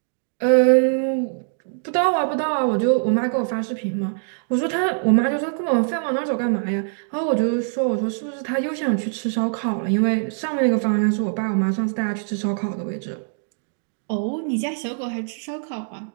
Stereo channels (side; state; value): left; silent; digital silence